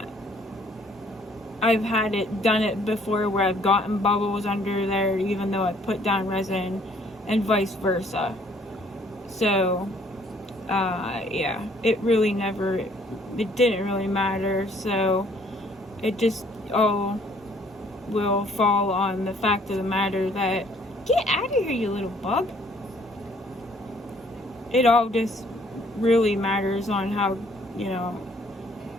had it done it before where I've gotten bubbles under there even though I put down resin, and vice versa. So yeah, it didn't really matter. So it just all will fall on the fact of the matter that, get out of here, you little bug. It all just really matters on how, you know,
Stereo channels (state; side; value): normal; both; correlation 0.61